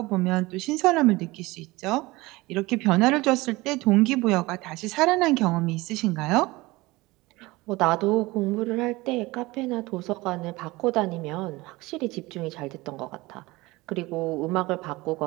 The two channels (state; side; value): quieter; left; 21.2 dB